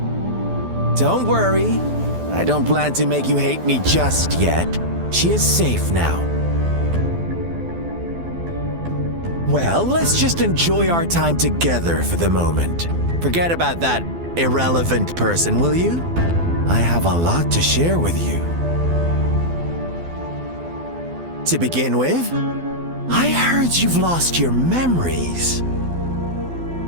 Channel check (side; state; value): left; late; 12 ms